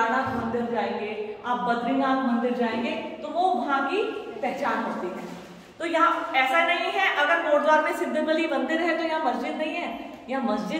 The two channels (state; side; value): identical; both; correlation 1.00